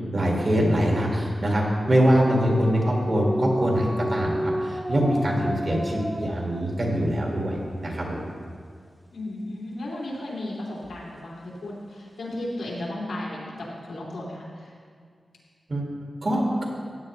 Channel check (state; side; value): normal; both; correlation 0.93